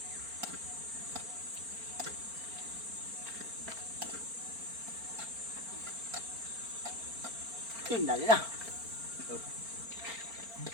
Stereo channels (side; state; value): left; late; 4.4 ms